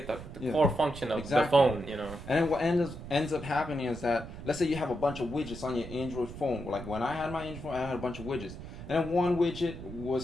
the core function of the phone. And then what ends up happening is that, let's say you have a bunch of widgets on your Android phone. Like when I had my Android phone, I had a bunch of widgets. And then one widget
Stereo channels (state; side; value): noise; right; rumble, 11 dB below the sound